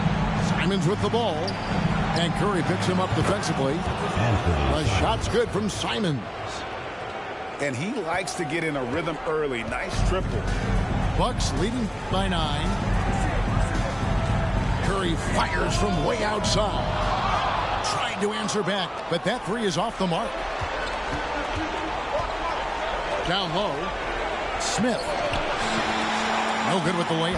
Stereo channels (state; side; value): identical; both; correlation 1.00